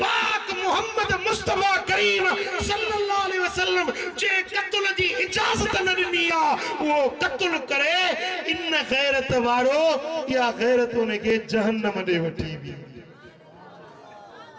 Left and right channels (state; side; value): identical; both; correlation 1.00